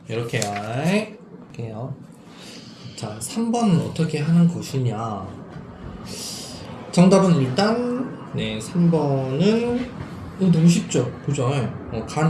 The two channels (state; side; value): identical; both; correlation 1.00